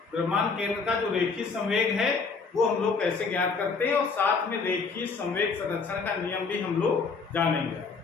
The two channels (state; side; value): quieter; right; 4.7 dB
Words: द्रव्यमान केंद्र का जो रेखीय संवेग है वो हम लोग कैसे ज्ञात करते हैं, और साथ में रेखीय संवेग संरक्षण का नियम भी हम लोग जानेंगे।